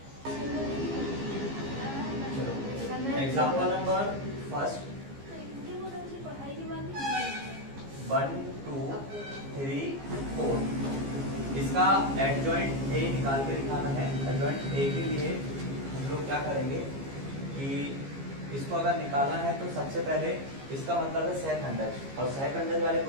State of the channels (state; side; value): late; left; 15 ms